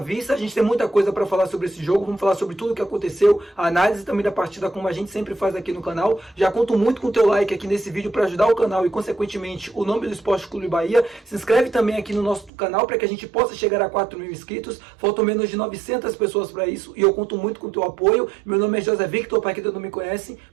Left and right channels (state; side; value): drops out; left; at 12.5 s